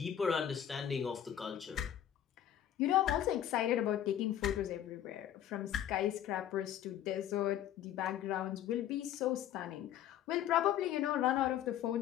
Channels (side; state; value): right; quieter; 10.9 dB